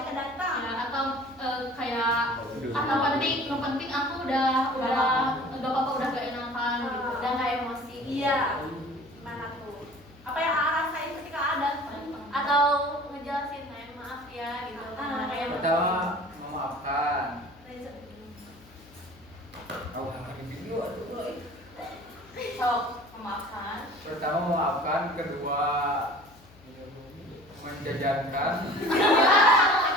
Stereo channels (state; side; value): noise; left; hum, 25 dB below the sound